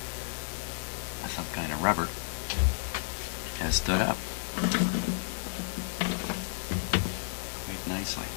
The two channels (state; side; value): silent; right; digital silence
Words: some kind of rubber. has stood up quite nicely.